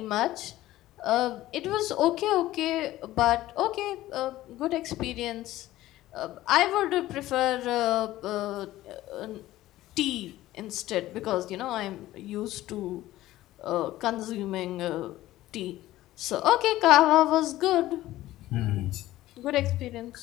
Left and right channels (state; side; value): quieter; right; 15.6 dB